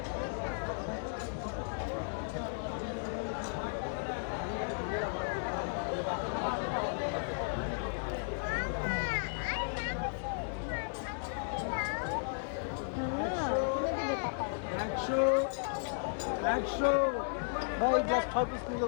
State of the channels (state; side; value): silent; right; digital silence